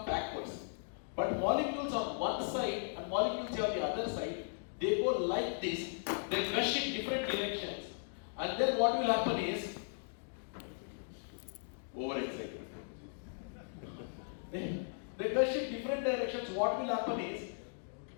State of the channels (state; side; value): silent; right; digital silence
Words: backwards. But molecules on one side and molecules on the other side, they go like this. They rush in different directions. And then what will happen is, overexcited. They rush in different directions. What will happen is,